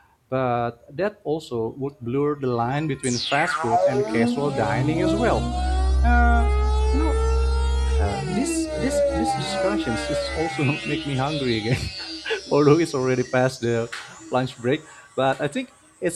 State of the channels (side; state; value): both; identical; correlation 1.00